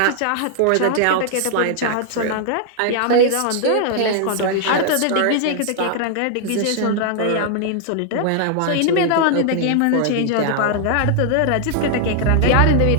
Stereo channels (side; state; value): both; different; correlation 0.00